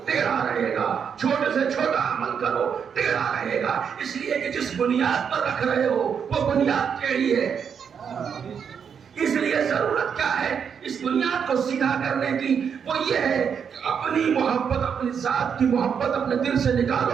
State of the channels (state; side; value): quieter; left; 7.1 dB